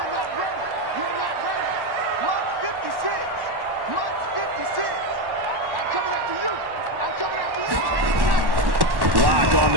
ready. You're not ready. March 56. March 56. I'm coming after you. I'm coming after you. Block on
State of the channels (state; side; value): late; left; 1.1 ms